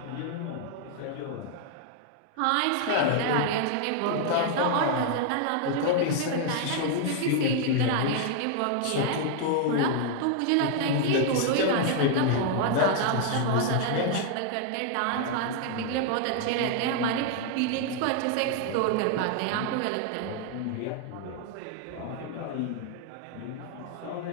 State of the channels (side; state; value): both; different; correlation 0.00